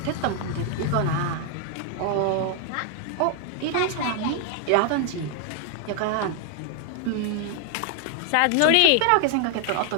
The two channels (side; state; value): both; different; correlation 0.00